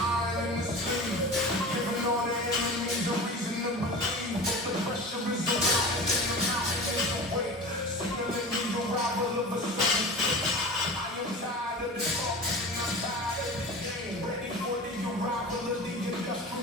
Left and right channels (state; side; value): normal; both; correlation 0.34